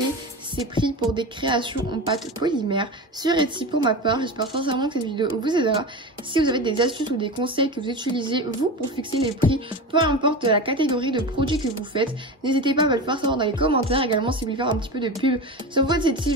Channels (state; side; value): normal; both; correlation 0.25